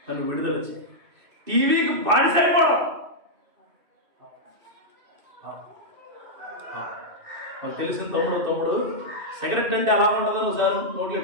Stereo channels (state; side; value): late; left; 2.6 ms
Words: నన్ను విడుదల చేయి. టీవీకి బానిసైపోవడం మనకు తెలిసిన తమ్ముడు సిగరెట్ అంటే ఎలా ఉంటుందని ఒకసారి నోట్లు